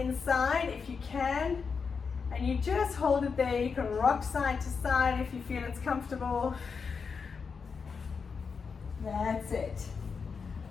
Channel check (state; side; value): quieter; right; 5.5 dB